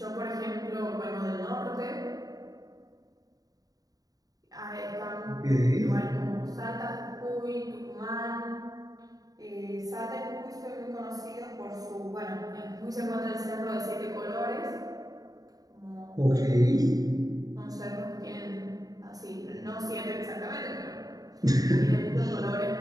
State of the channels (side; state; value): left; late; 0.18 ms